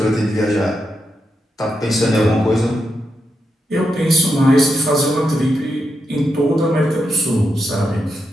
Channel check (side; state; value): both; normal; correlation 0.84